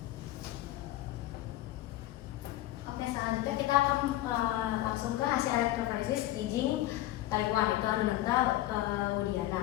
Oke, selanjutnya kita akan langsung ke hasil elektroforesis kijing Taiwan, itu Anodonta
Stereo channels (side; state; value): right; quieter; 15.5 dB